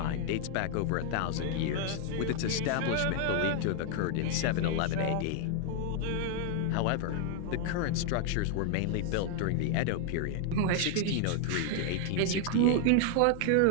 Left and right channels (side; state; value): both; different; correlation 0.00